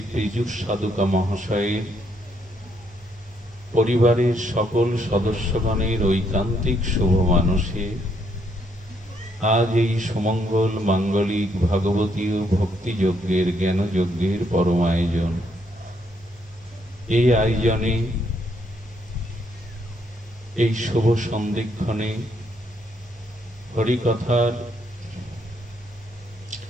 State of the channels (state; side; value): normal; both; correlation 0.73